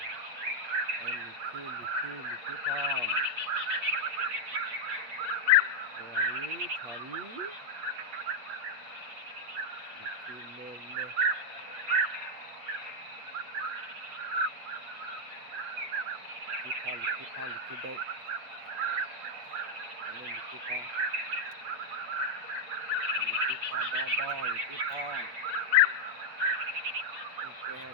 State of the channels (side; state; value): left; late; 8.4 ms